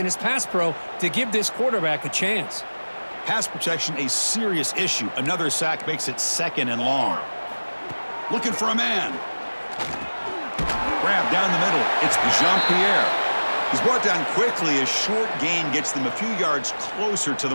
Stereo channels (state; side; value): inverted; both; correlation -1.00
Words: his pass pro to give this quarterback a chance. Pass protection, a serious issue. Another sack makes it 2nd and long. Looking for a man. Grab down the middle. It's Jean-Pierre. He's brought down quickly. A short gain gets them a few yards closer to